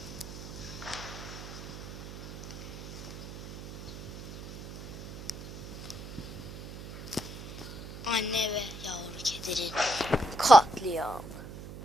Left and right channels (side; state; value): right; noise; hum, 11 dB below the sound